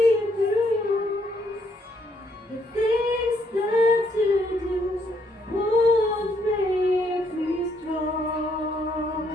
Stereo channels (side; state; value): both; normal; correlation 0.71